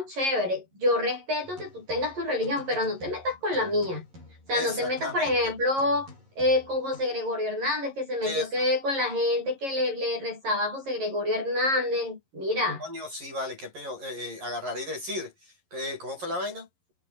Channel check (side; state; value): left; late; 11 ms